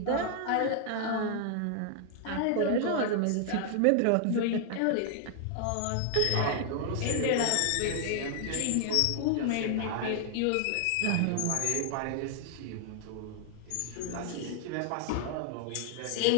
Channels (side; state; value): both; different; correlation 0.00